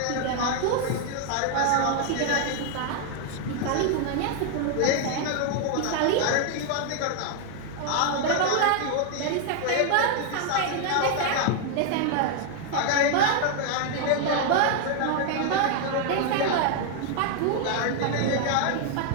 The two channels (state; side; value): different; both; correlation 0.00